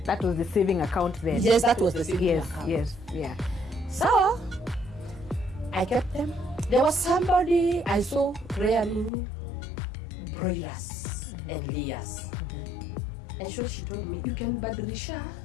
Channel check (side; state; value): right; drops out; at 9.1 s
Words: That was the saving account then? Yes, that was the saving account. Yes, yeah. So, I kept them. There was somebody I saw rearing broilers and layers. And so she told me, you can badilisha